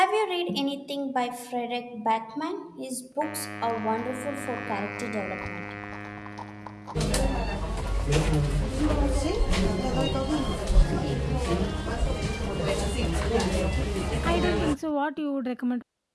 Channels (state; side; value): identical; both; correlation 1.00